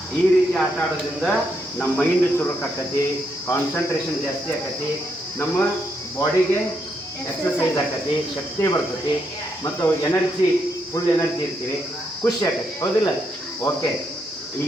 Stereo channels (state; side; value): normal; both; correlation 0.78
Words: ಈ ರೀತಿ ಆಟ ಆಡೋದ್ರಿಂದ ನಮ್ಮ ಮೈಂಡ್ ಚುರುಕು ಆಕತಿ, ಕಾನ್ಸಂಟ್ರೇಷನ್ ಜಾಸ್ತಿ ಆಕತಿ, ನಮ್ಮ ಬಾಡಿಗೆ ಎಕ್ಸರ್ಸೈಸ್ ಆಕತಿ, ಶಕ್ತಿ ಬರ್ತೈತಿ, ಮತ್ತು ಎನರ್ಜಿ ಫುಲ್ ಎನರ್ಜಿ ಇರ್ತೀವಿ, ಖುಷಿ ಆಕತಿ, ಹೌದಿಲ್ಲ? ಓಕೆ, ಈಗ